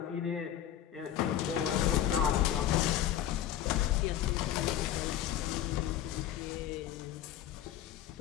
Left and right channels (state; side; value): quieter; right; 11.2 dB